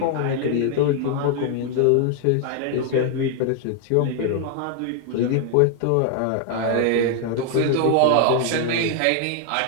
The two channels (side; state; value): both; different; correlation 0.00